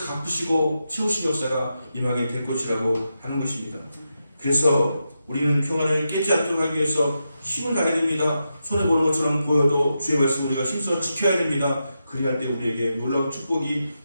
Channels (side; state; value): both; inverted; correlation -0.87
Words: 갚으시고 채우신 역사가 임하게 될 것이라고 하는 것입니다. 그래서 우리는 평안을 깨지 않도록 하기 위해서 힘을 다해야 됩니다. 손해보는 것처럼 보여도 주의 말씀 우리가 힘써 지켜야 됩니다. 그리할 때 우리에게 놀라운 축복이